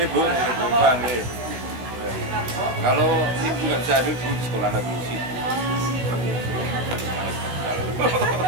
Bu, bukan nih. Kalau ibu nggak bisa hadir, bu di sekolah lagi sih.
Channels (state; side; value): late; left; 16 ms